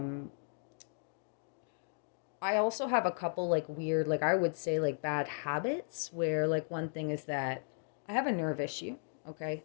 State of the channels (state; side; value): silent; right; digital silence